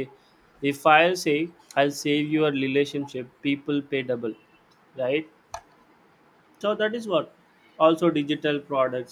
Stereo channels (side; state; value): both; identical; correlation 1.00